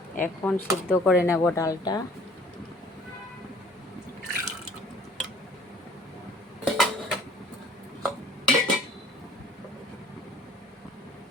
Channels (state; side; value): normal; both; correlation 0.53